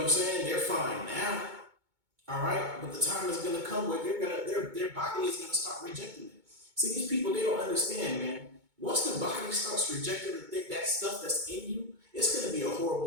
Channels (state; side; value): late; left; 2.2 ms